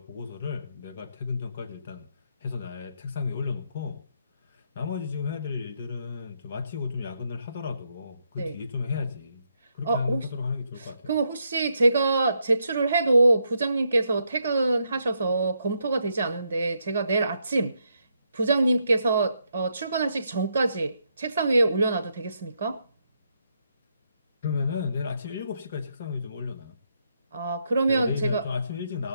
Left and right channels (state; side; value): inverted; both; correlation -0.78